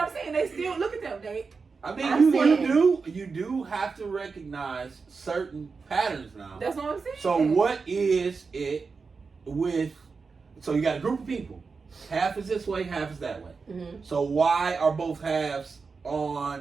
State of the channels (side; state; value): left; quieter; 4.8 dB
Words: saying they still look at them. They I mean, I'm saying- you do have to recognize certain patterns now. that's what I'm saying. So what is it with? So you got a group of people. Half is this way, half is that way. Mm-hmm. So why are both halves